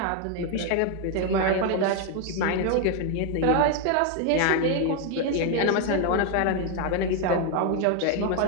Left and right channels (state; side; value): different; both; correlation 0.01